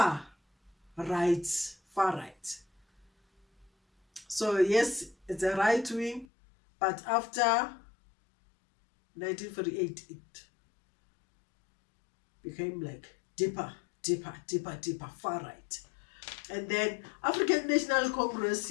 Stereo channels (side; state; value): right; drops out; at 6.2 s